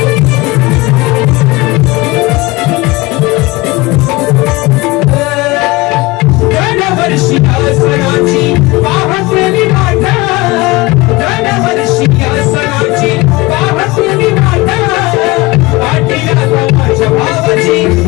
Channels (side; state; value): right; quieter; 22.0 dB